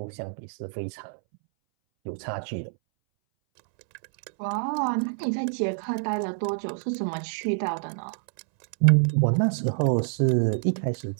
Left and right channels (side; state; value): left; silent; 60 dB below the other